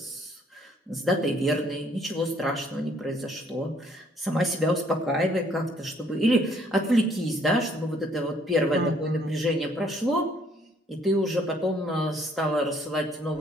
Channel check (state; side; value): normal; both; correlation 0.64